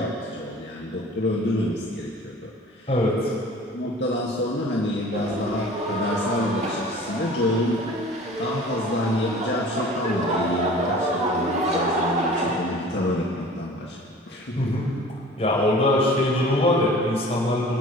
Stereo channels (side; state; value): both; normal; correlation 0.44